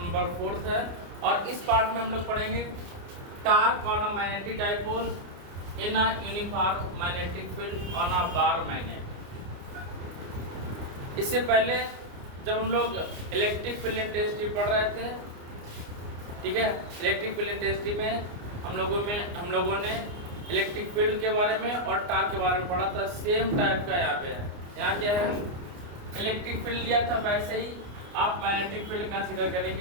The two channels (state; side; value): late; left; 29 ms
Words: 4 है। और इस पार्ट में हम लोग पढ़ेंगे torque on a magnetic dipole in a uniform magnetic field on a bar magnet. इससे पहले जब हम लोग इलेक्ट्रिक फील्ड इंटेंसिटी पढ़ रहे थे, ठीक है, इलेक्ट्रिक फील्ड इंटेंसिटी में हम लोगों ने इलेक्ट्रिक फील्ड के बारे में और टॉर्क के बारे में पढ़ा था। सेम टाइप का यहाँ पे है। यहाँ क्या है, इलेक्ट्रिक फील्ड लिया था, वैसे ही आप मैग्नेटिक फील्ड कंसीडर